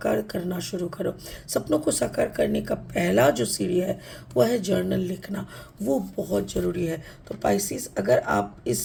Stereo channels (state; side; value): identical; both; correlation 1.00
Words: करना शुरू करो। सपनों को साकार करने का पहला जो सीढ़ी है वह है जर्नल लिखना। वो बहुत ज़रूरी है। तो पाइसिस, अगर आप